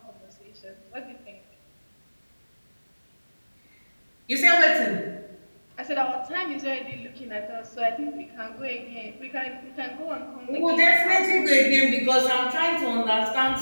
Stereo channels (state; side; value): inverted; both; correlation -1.00